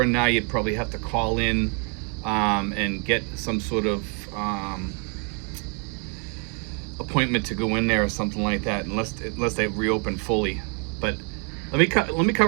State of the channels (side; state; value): left; quieter; 37.2 dB